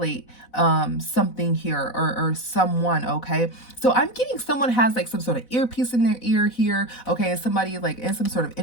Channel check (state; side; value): late; right; 4.0 ms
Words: something here, or someone, okay? So I'm getting someone has like some sort of earpiece in their ear here, okay? And somebody like in some sort of